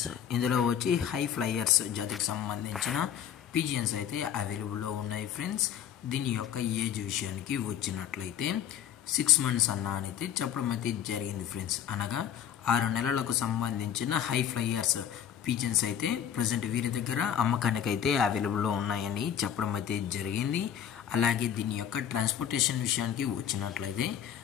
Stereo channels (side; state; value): right; quieter; 9.5 dB